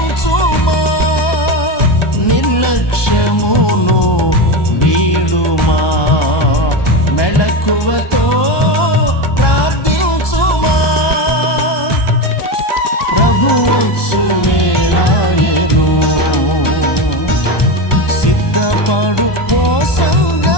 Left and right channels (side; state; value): right; late; 1.2 ms